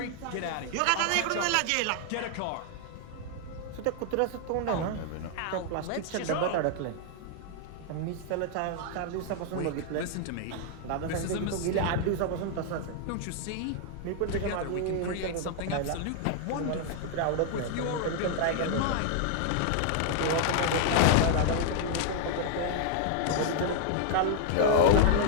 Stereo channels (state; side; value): different; both; correlation 0.00